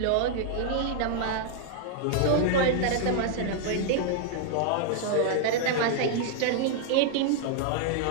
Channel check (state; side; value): different; both; correlation -0.01